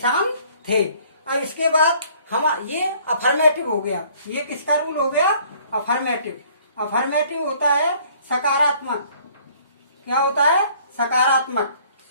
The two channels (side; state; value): both; inverted; correlation -0.58